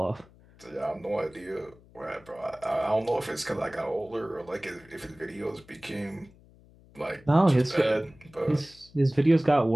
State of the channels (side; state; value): left; noise; hum, 26 dB below the sound